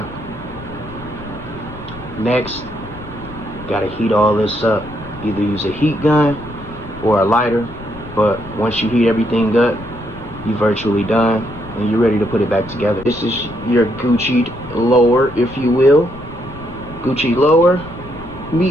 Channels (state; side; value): noise; left; rumble, 16 dB below the sound